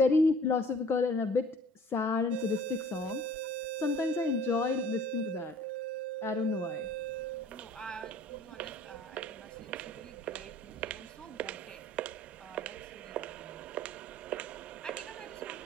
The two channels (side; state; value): both; normal; correlation 0.51